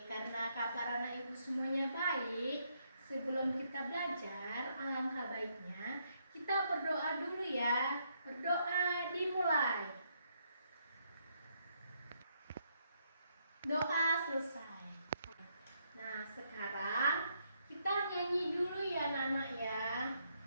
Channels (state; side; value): inverted; both; correlation -0.75